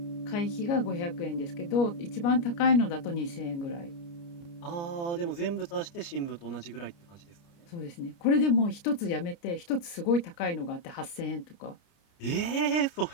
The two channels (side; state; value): right; late; 29 ms